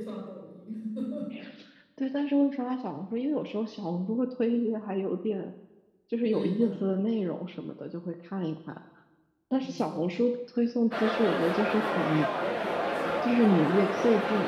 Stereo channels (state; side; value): identical; both; correlation 1.00